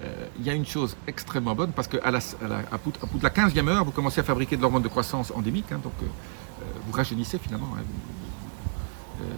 il y a une chose extrêmement bonne, parce qu'à bout de la 15e heure, vous commencez à fabriquer de l'hormone de croissance endémique, donc vous rajeunissez finalement.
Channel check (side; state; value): left; silent; digital silence